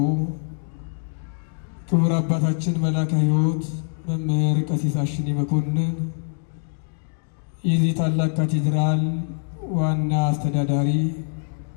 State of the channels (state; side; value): silent; right; digital silence